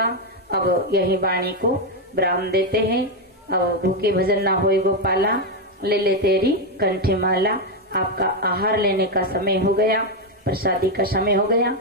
अब यही वाणी को विराम देते हैं। अब भूखे भजन ना होए गोपाला, ले ले तेरी कंठी माला। आपका आहार लेने का समय हो गया, प्रसादी का समय हो गया।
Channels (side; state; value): both; normal; correlation 0.05